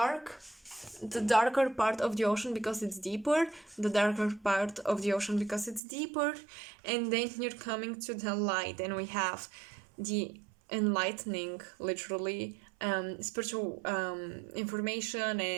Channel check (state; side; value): drops out; left; at 5.8 s